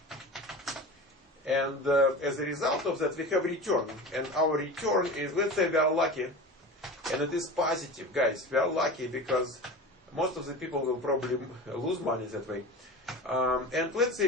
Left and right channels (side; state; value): both; normal; correlation 0.32